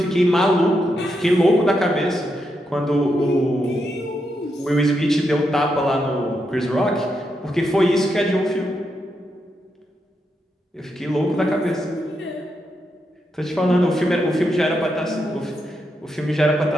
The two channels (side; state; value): both; normal; correlation 0.83